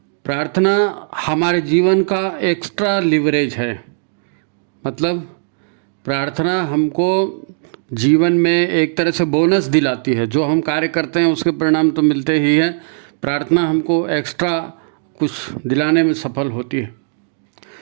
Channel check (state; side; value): silent; left; digital silence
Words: प्रार्थना हमारे जीवन का एक्स्ट्रा लिवरेज है। मतलब प्रार्थना हमको जीवन में एक तरह से बोनस दिलाती है। जो हम कार्य करते हैं उसके परिणाम तो मिलते ही हैं, प्रार्थना हमको एक्स्ट्रा कुछ दिलाने में सफल होती है।